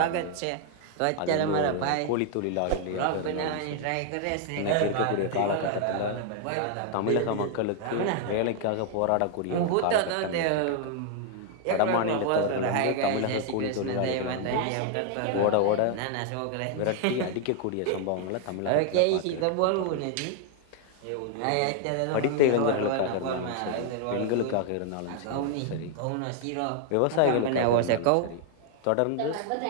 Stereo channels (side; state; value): both; different; correlation 0.00